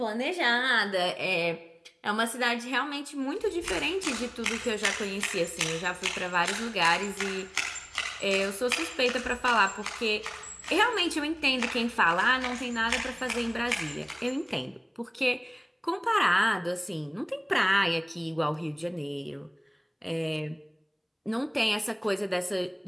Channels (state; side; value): identical; both; correlation 1.00